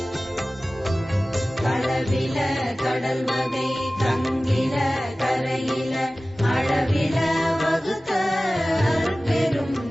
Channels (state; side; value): normal; both; correlation 0.97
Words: களவில கடல் வகை கங்கில கரையில அளவில வகுத்த அருட்பெரும்